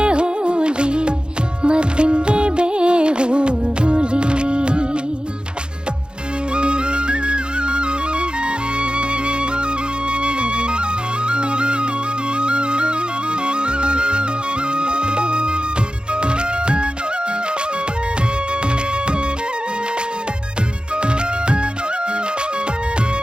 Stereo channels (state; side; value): late; left; 0.050 ms